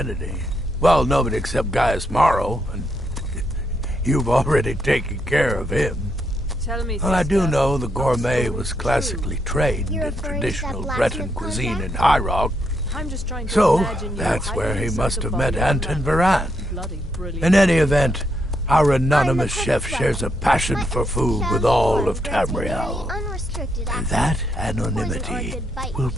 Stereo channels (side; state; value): both; normal; correlation 0.78